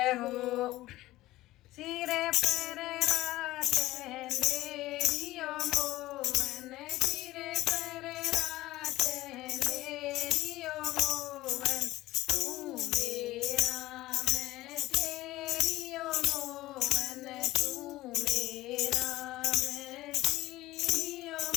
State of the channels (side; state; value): right; quieter; 17.1 dB